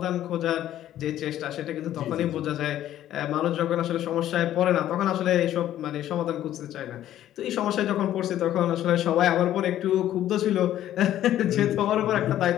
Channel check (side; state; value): right; quieter; 12.4 dB